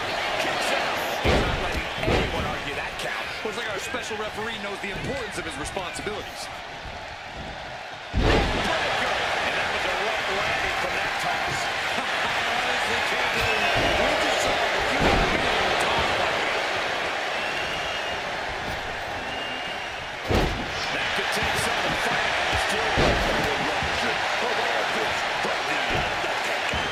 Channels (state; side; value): identical; both; correlation 1.00